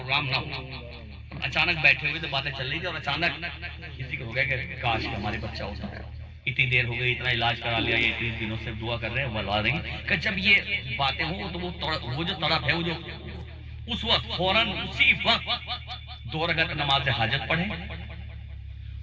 نہ ہو، اچانک بیٹھے ہوئے تو باتیں چل رہی تھی اور اچانک کسی کو ہو گیا کہ کاش ہمارے بچہ ہوتا ہے، اتنی دیر ہو گئی، اتنا علاج کرا لیا، یہ اتنے دنوں سے دعا کر رہے ہیں، بلوا رہی کہ جب یہ باتیں ہوں تو وہ جو تڑپ ہے، وہ جو اس وقت فوراً اسی وقت 2 رکعت نماز حاجت پڑھیں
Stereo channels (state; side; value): identical; both; correlation 1.00